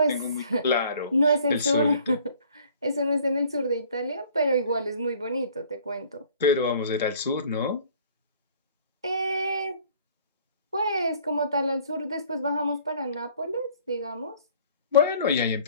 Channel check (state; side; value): inverted; both; correlation -0.54